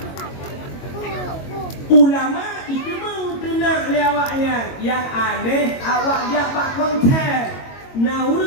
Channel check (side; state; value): right; late; 22 ms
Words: Ulama itu mengenal lewatnya. Yang aneh awak dia pak konser. Nah